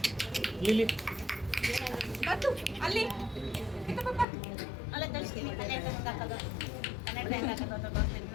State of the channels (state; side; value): drops out; right; at 4.2 s